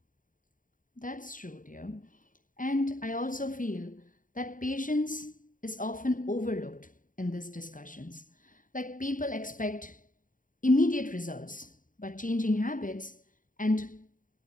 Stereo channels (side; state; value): right; late; 0.39 ms